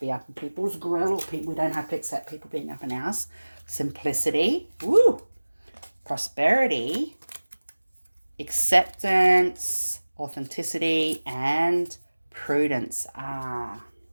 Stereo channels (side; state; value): both; inverted; correlation -1.00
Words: up in people's grill, or we don't have to accept people being up in ours. Simplicity. Woo. Prosperity. Acceptance. Authenticity. And prudence.